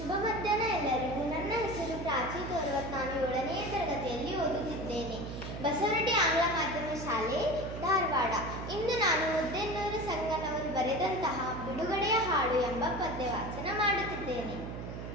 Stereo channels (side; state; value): right; noise; hum, 8 dB below the sound